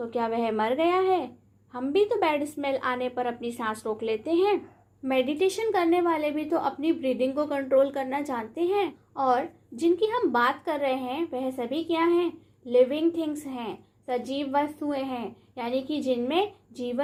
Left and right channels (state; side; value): identical; both; correlation 1.00